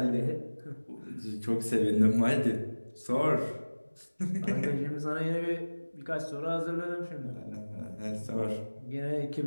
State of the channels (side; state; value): both; inverted; correlation -1.00